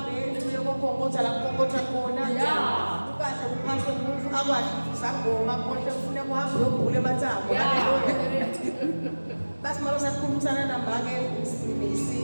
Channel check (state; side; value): inverted; both; correlation -1.00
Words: uyokonkotha la konkotha khona. Ukahle uphase umufu akwadi ukuthi sangoma konke ufuna kuhambe uyogula emathambo. Hallelujah. Basi malo sakhulumisana nambake